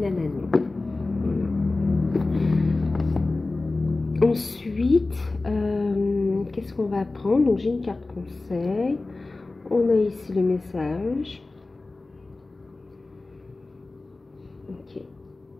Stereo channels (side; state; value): right; quieter; 3.3 dB